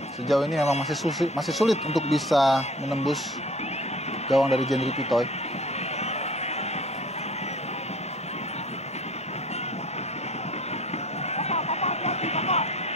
sejauh ini memang masih sulit untuk bisa menembus gawang dari Jendri Pitoy.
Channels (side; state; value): both; normal; correlation 0.49